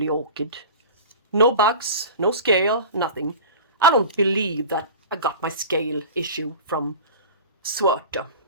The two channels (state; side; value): inverted; both; correlation -0.34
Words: orchid. No bugs, no scale, nothing. I don't believe that I got my scale issue from Schwerter.